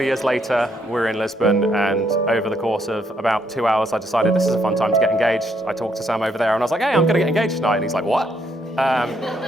of years later. We're in Lisbon, and over the course of about 2 hours, I decided this is a fun time to get engaged. I talked to Sam over there, and I was like, hey, I'm going to get engaged tonight. And he's like, what? I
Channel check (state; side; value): normal; both; correlation 0.73